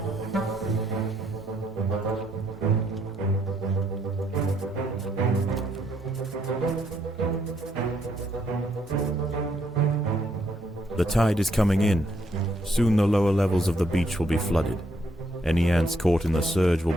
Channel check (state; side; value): normal; both; correlation 0.73